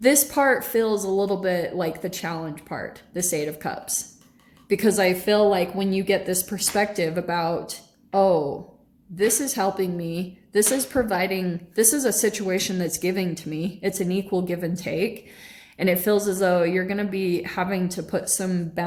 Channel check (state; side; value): identical; both; correlation 1.00